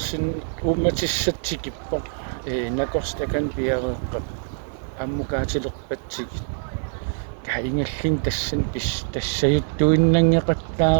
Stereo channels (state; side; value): silent; left; 63 dB below the other